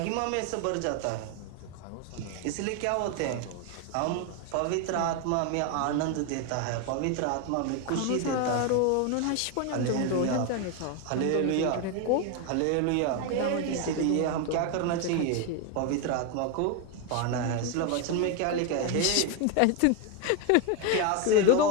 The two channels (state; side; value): different; both; correlation 0.02